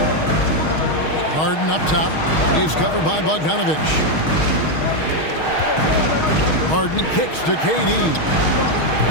Harden up top. He's covered by Bogdanovich. Harden kicks to KD.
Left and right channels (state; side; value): late; right; 6.4 ms